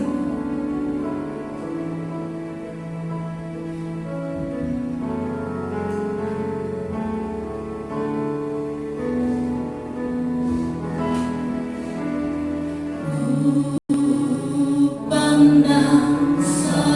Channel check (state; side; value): identical; both; correlation 1.00